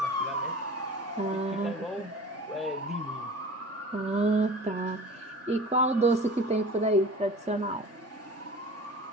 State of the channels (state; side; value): normal; both; correlation 0.38